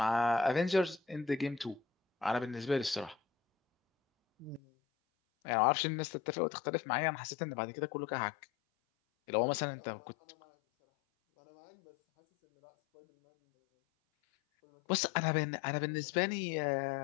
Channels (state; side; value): drops out; right; at 4.6 s